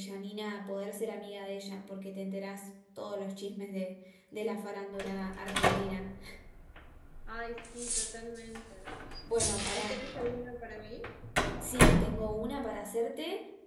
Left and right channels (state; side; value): identical; both; correlation 1.00